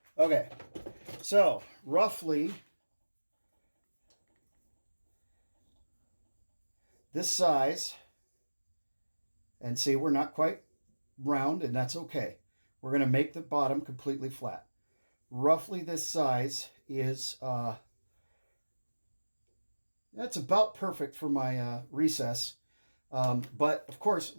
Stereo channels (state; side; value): inverted; both; correlation -1.00